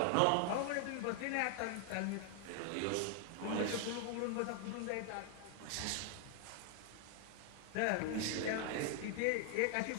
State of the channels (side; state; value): both; different; correlation 0.00